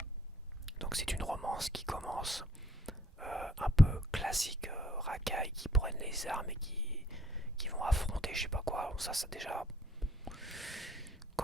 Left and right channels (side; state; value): both; normal; correlation 0.64